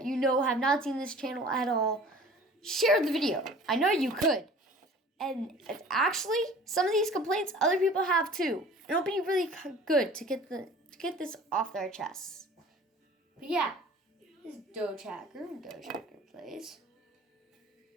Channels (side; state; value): both; normal; correlation 0.45